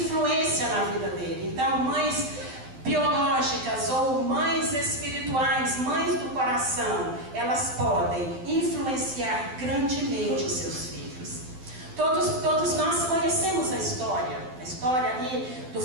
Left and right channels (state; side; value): late; left; 12 ms